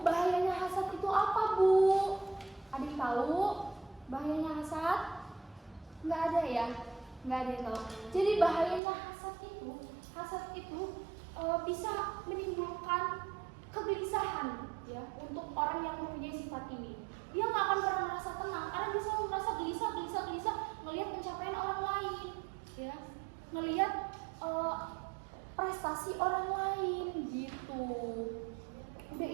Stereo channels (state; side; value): drops out; left; at 8.8 s